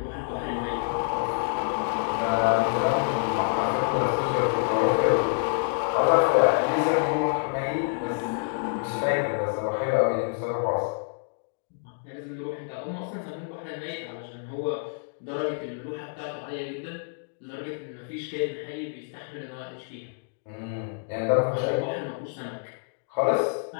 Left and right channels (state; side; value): silent; right; digital silence